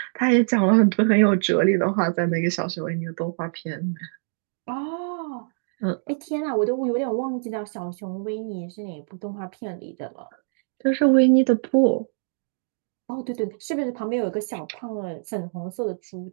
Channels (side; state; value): left; silent; digital silence